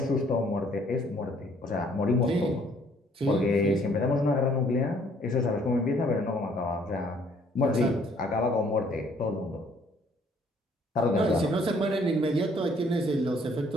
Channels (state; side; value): normal; both; correlation 0.62